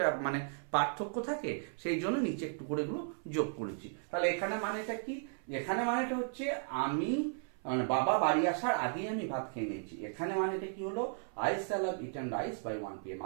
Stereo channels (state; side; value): silent; left; 54 dB below the other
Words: মানে পার্থক্য থাকে, সেই জন্য নিচে একটু করে এগুলো যোগ করেছি। তাহলে এখানে মানেটা কি? এখানে মানেটা হচ্ছে আমি মানে বাবা বাড়ি আসার আগেই আমি ভাত খেয়ে নিয়েছি। এখানে মানেটা কি হলো? I shall have eaten rice by 1 PM।